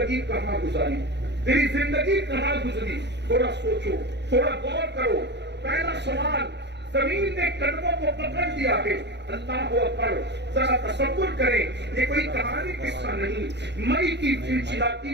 کہاں گزاری، تیری زندگی کہاں گزری، تھوڑا سوچو، تھوڑا غور کرو۔ پہلا سوال، زمین نے قدموں کو پکڑ لیا ہے، اللہ اکبر، ذرا تصور کریں، یہ کوئی کہانی قصہ نہیں، مئی کی چلچلاتی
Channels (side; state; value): left; late; 0.50 ms